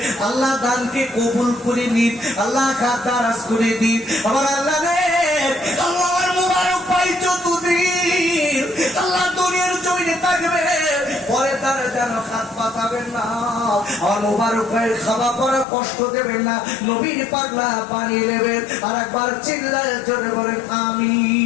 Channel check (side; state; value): right; drops out; at 15.7 s